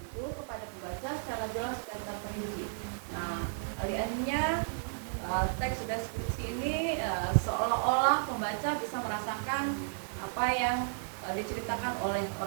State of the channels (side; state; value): left; silent; digital silence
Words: kepada pembaca secara jelas dan terperinci. Nah, alih-alihnya teks deskripsi ini seolah-olah pembaca bisa merasakan apa yang diceritakan oleh